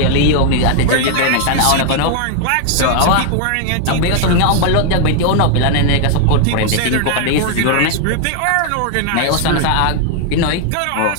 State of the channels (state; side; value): different; both; correlation 0.00